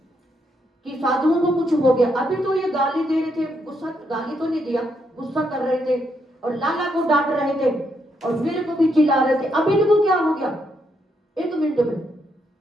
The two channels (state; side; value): normal; both; correlation 0.77